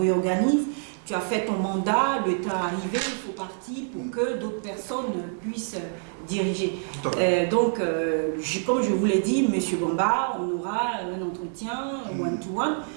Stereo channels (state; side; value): silent; left; 61 dB below the other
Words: Tu as fait ton mandat, le temps est arrivé, il faut partir pour que d'autres personnes puissent diriger. Comme je vous l'ai dit, M. Bamba, on aura un entretien one-to-one,